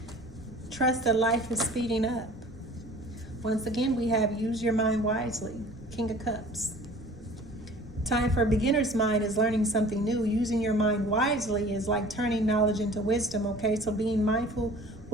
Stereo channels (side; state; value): both; normal; correlation 0.46